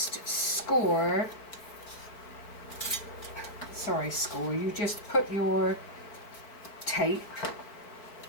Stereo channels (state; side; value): late; right; 4.4 ms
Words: you just put your tape